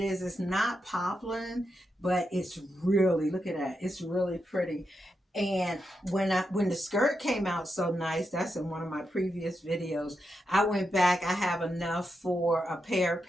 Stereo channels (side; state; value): both; normal; correlation 0.85